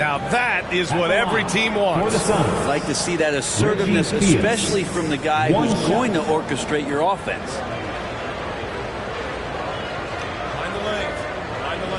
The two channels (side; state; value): both; identical; correlation 1.00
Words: that is what every team wants. I'd like to see that assertiveness, especially from the guy who's going to orchestrate your offense. Find the lanes. Find the